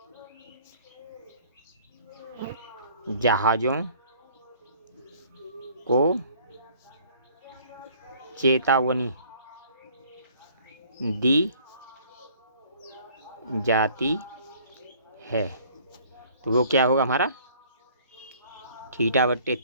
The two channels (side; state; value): both; inverted; correlation -0.56